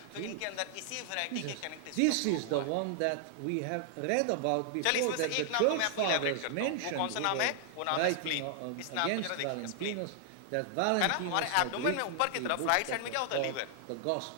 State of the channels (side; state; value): both; different; correlation 0.00